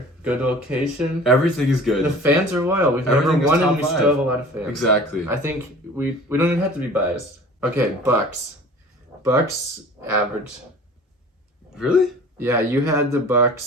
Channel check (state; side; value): normal; both; correlation 0.44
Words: good location. everything is The good. fans are loyal. We've never Everything is won, and top we 5. still have a lot of fans. Exactly. I think we don't even have to be biased. Okay, Bucks. Bucks average. Really? Yeah, you had the